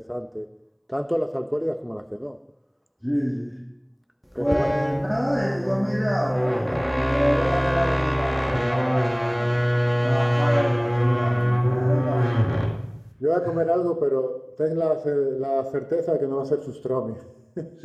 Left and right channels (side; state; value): both; identical; correlation 1.00